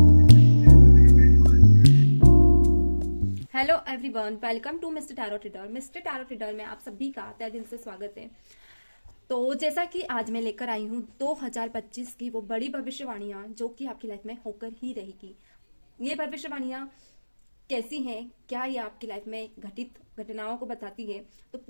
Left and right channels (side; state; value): both; inverted; correlation -1.00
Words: everyone, welcome to mister tarot reader. Mister tarot reader में आप सभी का तहे दिल से स्वागत है। तो जैसा कि आज मैं लेकर आई हूँ 2025 की वो बड़ी भविष्यवाणियां जो कि आपकी लाइफ में होकर ही रहेगी। ये भविष्यवाणियां कैसी हैं, क्या ये आपकी लाइफ में घटित घटनाओं को बताती है, तो